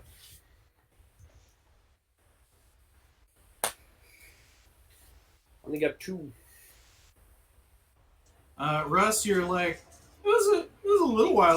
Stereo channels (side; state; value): both; identical; correlation 1.00